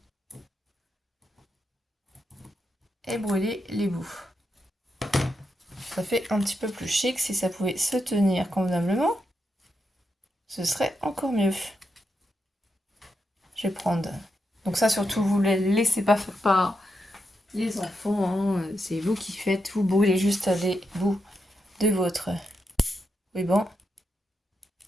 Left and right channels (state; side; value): normal; both; correlation 0.84